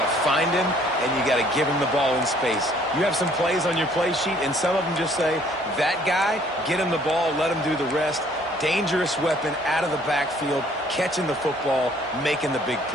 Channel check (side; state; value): both; normal; correlation 0.60